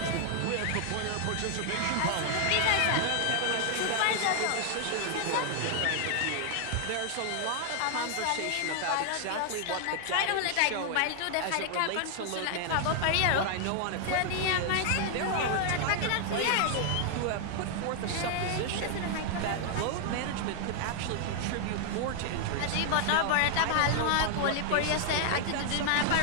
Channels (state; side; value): different; both; correlation 0.00